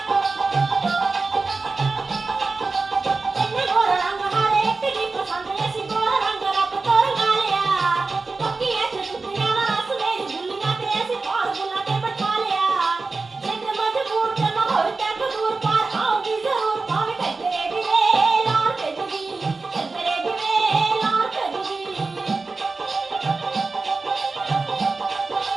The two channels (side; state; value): left; quieter; 3.9 dB